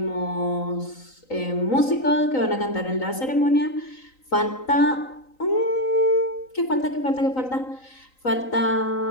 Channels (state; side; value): late; right; 3.9 ms